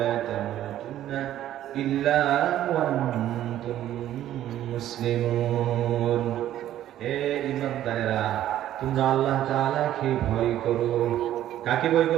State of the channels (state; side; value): quieter; left; 12.4 dB